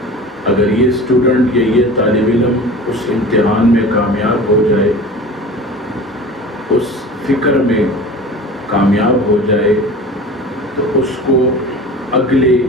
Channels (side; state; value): both; normal; correlation 0.37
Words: اگر یہ اسٹوڈنٹ یا یہ طالب علم اس امتحان میں کامیاب ہو جائے، اس فکر میں کامیاب ہو جائے تو اس کو اگلے